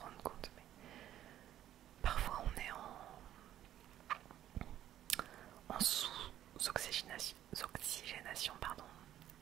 compte, mais parfois on est en sous-oxygénation, pardon,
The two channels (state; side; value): quieter; left; 12.0 dB